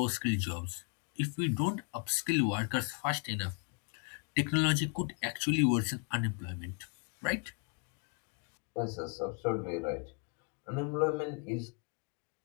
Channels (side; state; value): right; quieter; 37.2 dB